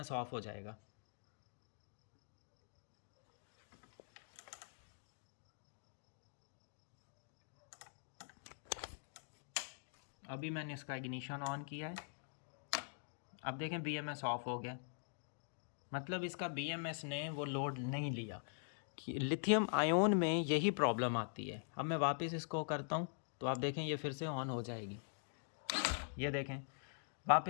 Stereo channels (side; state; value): right; silent; digital silence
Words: ऑफ हो जाएगा। अभी मैंने इसका इग्निशन ऑन किया है, अब देखें BMS ऑफ हो गया। मतलब इसका BMS ने वो लोड नहीं लिया। लिथियम आयोन में यही प्रॉब्लम आती है। अब मैं वापस इसको करता हूँ तो आप देखें ये फिर से ऑन हो जाएगी। ये देखें